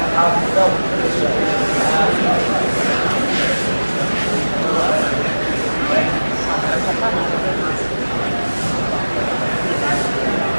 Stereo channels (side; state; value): both; inverted; correlation -1.00